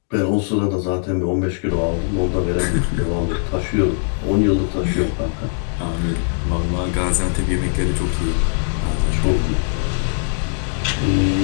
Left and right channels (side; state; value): right; silent; digital silence